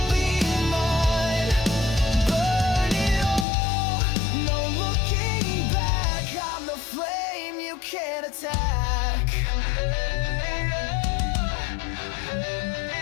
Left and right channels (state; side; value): drops out; right; at 3.5 s